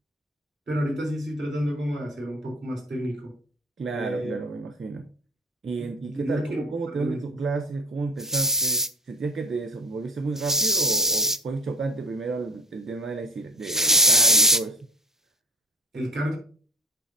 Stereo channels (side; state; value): both; normal; correlation 0.35